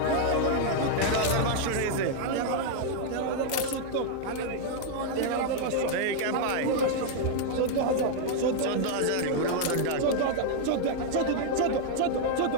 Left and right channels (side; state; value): both; different; correlation -0.01